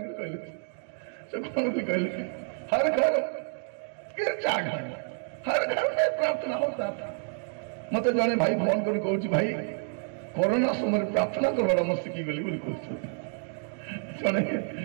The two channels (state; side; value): silent; left; 58 dB below the other